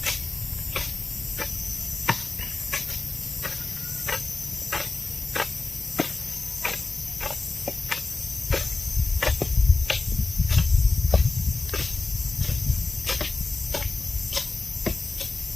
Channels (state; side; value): quieter; right; 3.5 dB